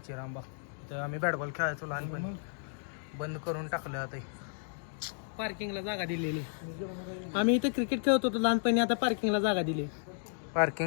रामबा. इथं आम्ही बॅट बॉल खेळायचो लहानपणी. बंद करून टाकलं आता. पार्किंगला जागा दिलेली. आम्ही इथे क्रिकेट खेळत होतो लहानपणी. आता पार्किंगला जागा दिली.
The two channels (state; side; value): silent; right; digital silence